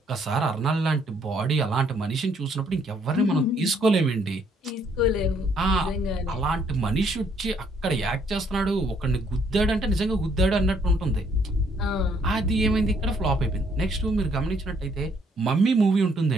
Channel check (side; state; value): both; normal; correlation 0.68